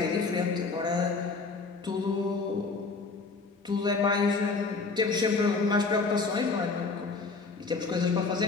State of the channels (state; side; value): quieter; right; 4.2 dB